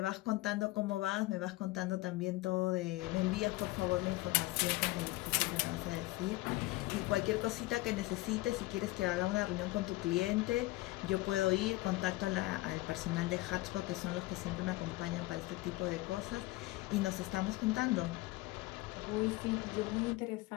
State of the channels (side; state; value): right; quieter; 19.9 dB